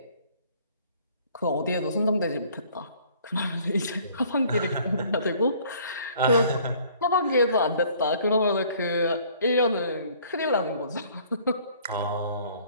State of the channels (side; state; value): both; inverted; correlation -0.57